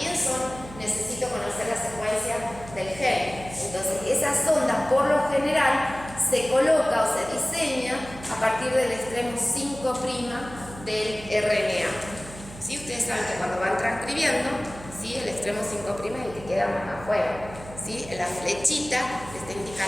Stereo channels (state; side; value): noise; right; hum, 15 dB below the sound